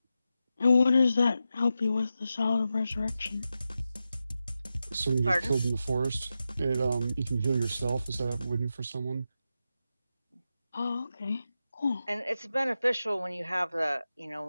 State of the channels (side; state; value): both; inverted; correlation -0.90